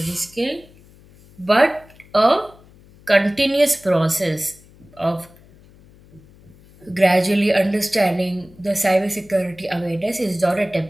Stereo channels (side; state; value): left; noise; hum, 26 dB below the sound